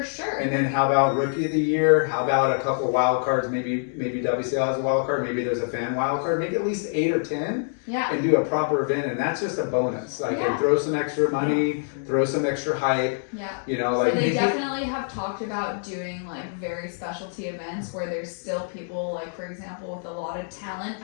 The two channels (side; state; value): right; silent; digital silence